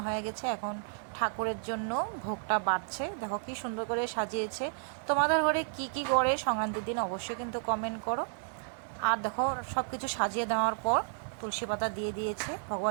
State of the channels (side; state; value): left; silent; digital silence